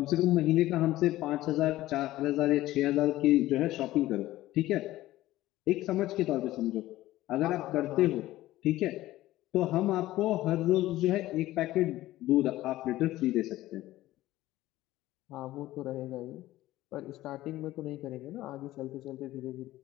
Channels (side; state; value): right; quieter; 15.9 dB